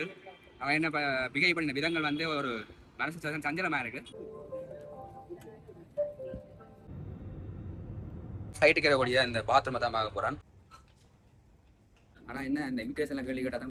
அவன் என்ன பிகை பண்ண விதங்கள் வந்து ஒரு மனசு சஞ்சலமா இருக்கு. சைட்டுக்கு இருக்கக்கூடிய இந்த பாத்ரூமை தான் பார்க்க போறான். ஆனால் என்ன இந்த இமிகிரேஷனில் கேள்வி கேட்டால்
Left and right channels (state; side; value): identical; both; correlation 1.00